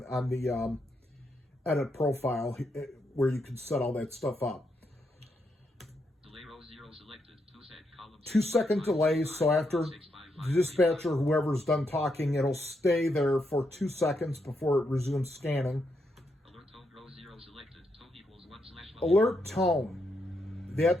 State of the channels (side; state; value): both; normal; correlation 0.80